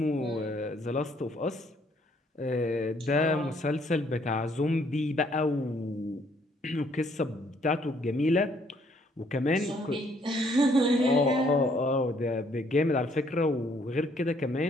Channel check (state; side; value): normal; both; correlation 0.66